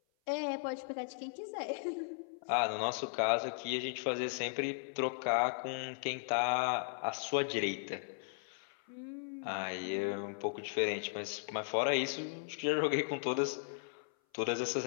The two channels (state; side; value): silent; right; 53 dB below the other